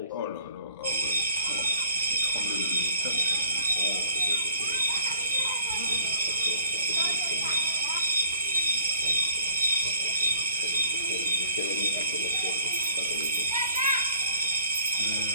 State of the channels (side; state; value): both; inverted; correlation -0.57